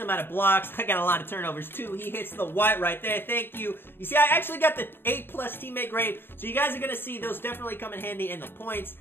amount of blocks. I got a lot of turnovers too. He hits the white right there. Thank you. You see, I actually got the 8+ teammate grade. So you guys are going to see those definitely come in handy in the points.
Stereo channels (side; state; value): right; late; 0.10 ms